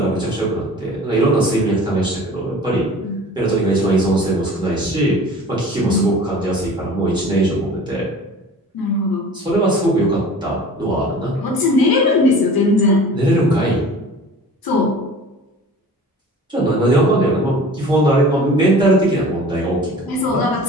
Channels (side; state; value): both; normal; correlation 0.42